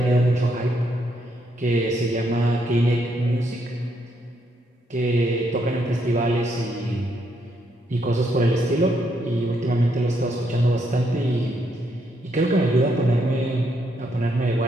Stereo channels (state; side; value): normal; both; correlation 0.75